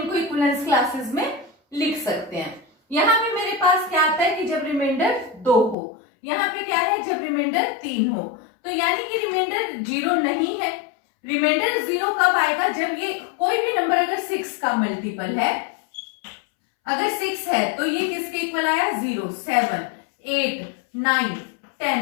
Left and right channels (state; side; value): drops out; right; at 5.8 s